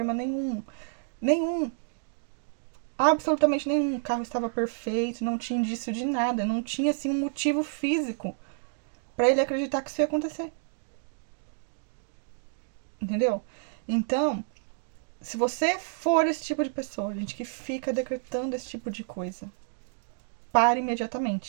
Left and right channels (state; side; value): silent; left; digital silence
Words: nenhum. Nenhum. Absolutamente nenhum. O carro estava perfeito, não tinha indício de nada. Não tinha, assim, um motivo físico para ele acreditar que isso ia acontecer. Entendeu? Então, se você for esse tipo de pessoa, gente, que fica decretando esse tipo de coisa, pare